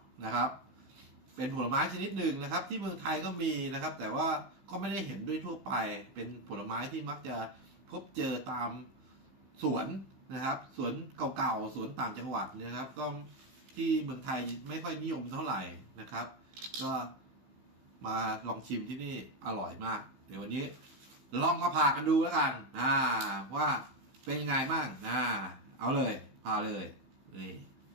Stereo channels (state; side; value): late; left; 15 ms